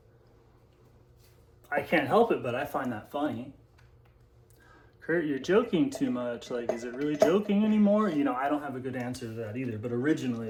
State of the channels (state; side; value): identical; both; correlation 1.00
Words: I can't help it, but I find that funny. Kurt, you're joking too much. Like, is it really joking anymore? I don't have a good answer to that either, but originally